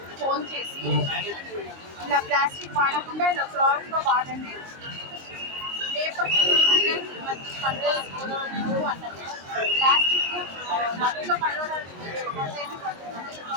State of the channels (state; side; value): late; left; 22 ms